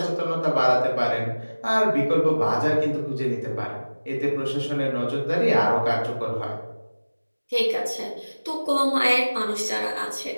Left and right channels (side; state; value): both; inverted; correlation -1.00